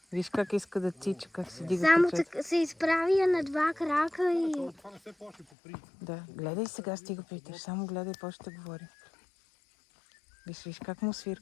Виж как иска да тича, как се дига Само пъчет. се изправя на два крака и... Това не се плаши по принцип. Да, гледай сега, стига питаш. Само гледай, после ще говори. Виж как му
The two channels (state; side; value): drops out; right; at 5.5 s